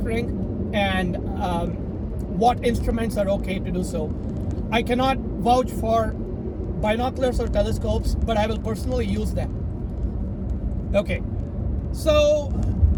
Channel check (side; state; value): both; identical; correlation 1.00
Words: and what instruments are okay to do so. I cannot vouch for binoculars or telescopes, but I will personally use them. Okay, so